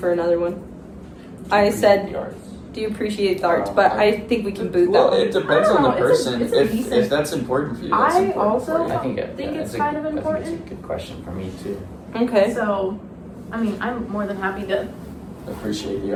another one. I said, The arts. do you appreciate the arts? Oh, But I- I think we can boot that Well, one. it depends I don't on the know, it's a- person. it's a decent- If that's important for you, that's I important also- for you. I think it's that's kind of I think important. it's a good question for me too. Okay. So, I mean, I'm more than happy to. Appreciate the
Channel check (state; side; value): identical; both; correlation 1.00